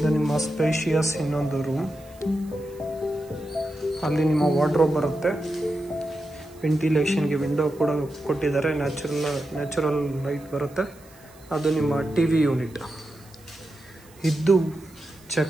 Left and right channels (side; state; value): right; noise; hiss, 26 dB below the sound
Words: ನಿಮ್ಮ ಸ್ಪೇಷಿಯಸ್ ಇನ್ನೊಂದು ರೂಮ್. ಅಲ್ಲಿ ನಿಮ್ಮ ವಾರ್ಡ್ರೋಬ್ ಬರುತ್ತೆ, ವೆಂಟಿಲೇಷನ್ಗೆ ವಿಂಡೋ ಕೂಡ ಕೊಟ್ಟಿದ್ದಾರೆ, ನ್ಯಾಚುರಲ್ ಲೈಟ್ ಬರುತ್ತೆ. ಅದು ನಿಮ್ಮ ಟಿವಿ ಯೂನಿಟ್. ಇದು